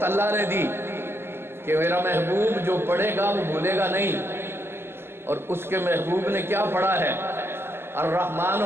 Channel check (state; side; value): late; left; 0.11 ms